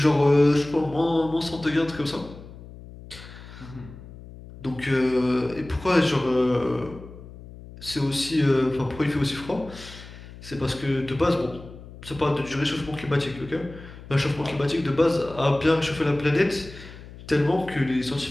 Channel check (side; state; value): left; noise; hum, 16 dB below the sound